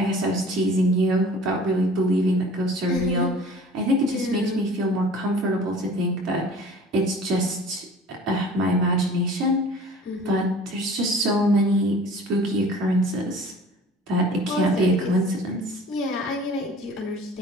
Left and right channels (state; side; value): normal; both; correlation 0.45